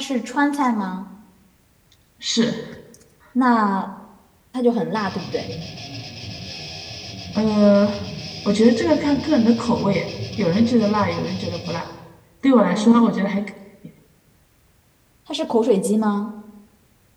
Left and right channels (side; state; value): both; identical; correlation 1.00